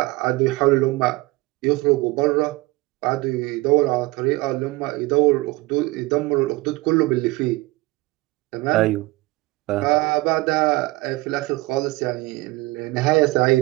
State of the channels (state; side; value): quieter; left; 21.5 dB